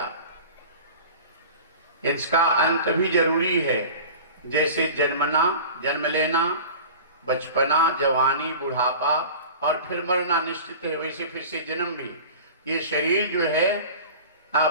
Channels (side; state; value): both; inverted; correlation -0.37